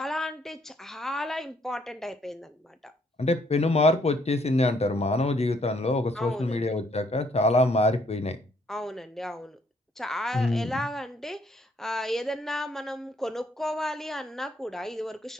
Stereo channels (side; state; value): both; normal; correlation 0.68